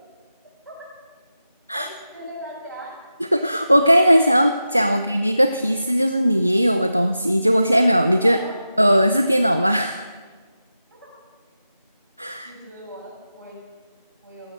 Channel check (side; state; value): both; inverted; correlation -0.91